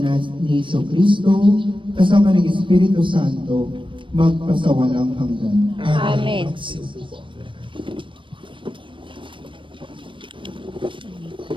ni Jesucristo, kasama ng Espiritu Santo, magpasawalang hanggan. Amen.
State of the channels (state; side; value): late; left; 0.24 ms